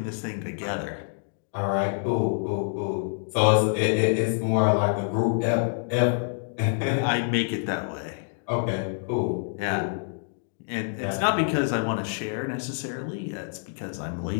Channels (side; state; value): right; silent; digital silence